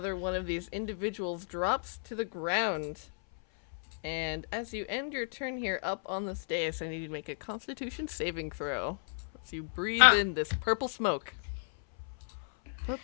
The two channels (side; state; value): right; silent; 55 dB below the other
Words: one of these individuals drops to the ground. And as you end your turn here up on this dais, I need you to make a Constitution saving throw. As you breathe in this purple smoke.